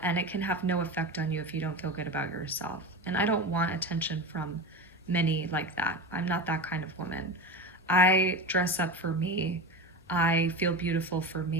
and it can have no effect on you if you don't feel good about yourself. And I don't want attention from many like that. I'm not that kind of woman. I dress up for me. I feel beautiful for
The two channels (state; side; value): normal; both; correlation 0.25